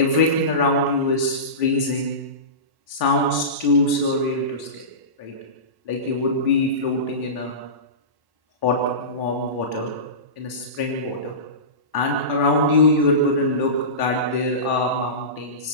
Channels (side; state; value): left; late; 1.1 ms